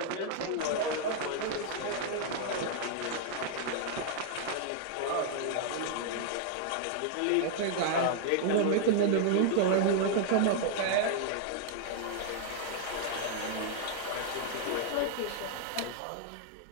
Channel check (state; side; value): different; both; correlation -0.01